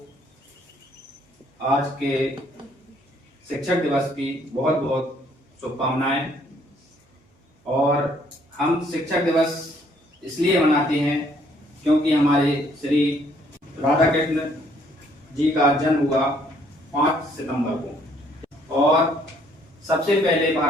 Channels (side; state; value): both; normal; correlation 0.65